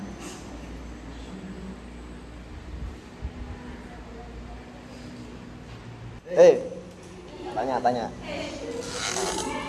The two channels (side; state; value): both; identical; correlation 1.00